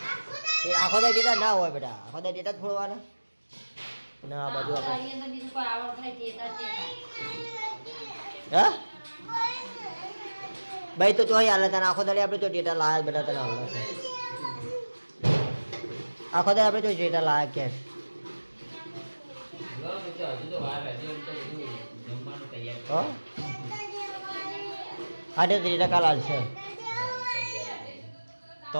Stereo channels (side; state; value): both; inverted; correlation -1.00